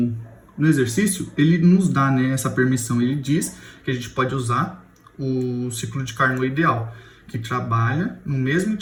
exercício, ele nos dá, né, essa permissão. Ele diz que a gente pode usar o ciclo de Carnot ideal, que trabalha no mesmo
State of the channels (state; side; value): identical; both; correlation 1.00